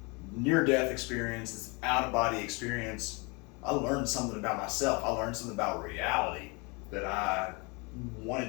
near-death experience, this out-of-body experience, I learned something about myself. I learned something about reality that I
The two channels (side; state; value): right; quieter; 29.1 dB